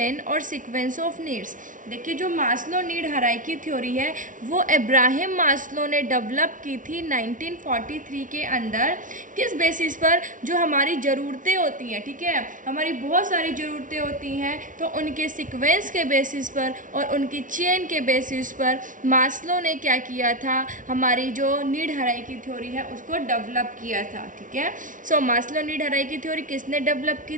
और सीक्वेंस ऑफ नीड्स। देखिए, जो मास्लो नीड हायरार्की थ्योरी है वो अब्राहम मास्लो ने डेवलप की थी 1943 के अंदर। किस बेसिस पर? जो हमारी ज़रूरतें होती हैं, ठीक है, हमारी बहुत सारी ज़रूरतें होती हैं, तो उनके सीक्वेंस के बेसिस पर और उनकी चेन के बेसिस पर मास्लो ने क्या किया था, हमारी जो नीड हायरार्की थ्योरी है उसको डेवलप किया था। ठीक है, मास्लो नीड हायरार्की थ्योरी किसने डेवलप की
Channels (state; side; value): late; left; 0.38 ms